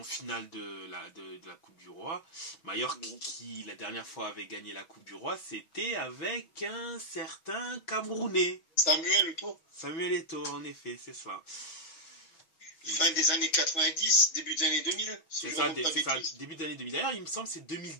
finale de la Coupe du Roi. Majorque, qui la dernière fois avait gagné la Coupe du Roi, c'était avec un certain Camerounais. Samuel Eto'o. Samuel Eto'o, en effet, c'est ça. Fin des années 90, début des années 2000. C'est ça, début des années 2000. D'ailleurs, il me semble que c'est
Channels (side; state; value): right; late; 6.1 ms